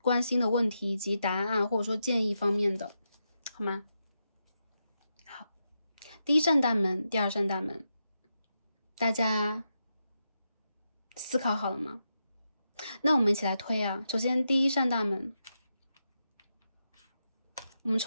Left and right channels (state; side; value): inverted; both; correlation -0.86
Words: 关心的问题以及答案或者说建议方面的，好吗？好，第1扇大门，第2扇大门。大家思考好了吗？那我们一起来推啊。首先，第1扇大门，我们